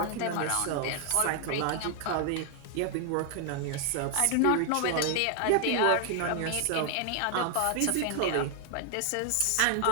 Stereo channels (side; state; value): both; different; correlation 0.00